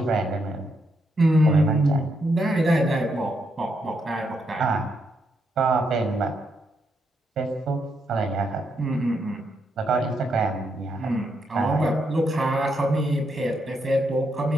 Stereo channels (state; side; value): normal; both; correlation 0.79